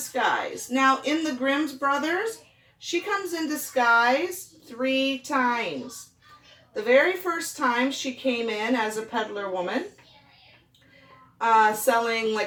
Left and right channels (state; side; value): identical; both; correlation 1.00